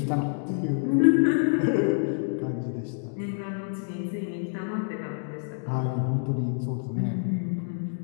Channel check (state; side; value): silent; right; digital silence